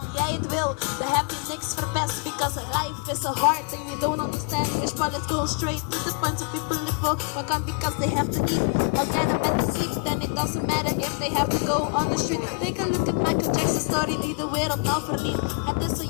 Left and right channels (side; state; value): right; quieter; 38.0 dB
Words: jij het wil, dan heb je niks verpest. Because life is so hard and you don't understand English. But let's go straight to the point. So people live for what can because they have to eat. Or get a better sleep, then it doesn't matter if they have to go on the street. Take a look at Michael Jackson's story die de wereld nou verliet. Het is zo